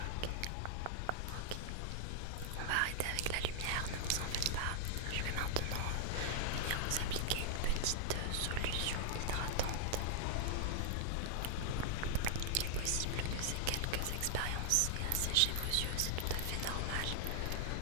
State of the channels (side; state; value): both; different; correlation -0.01